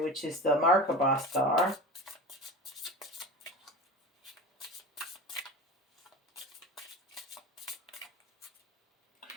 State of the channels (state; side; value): normal; both; correlation 0.31